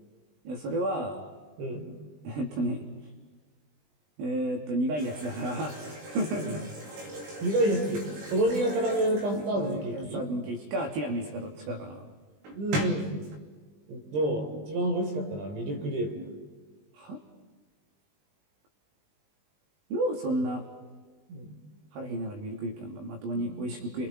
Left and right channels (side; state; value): left; late; 20 ms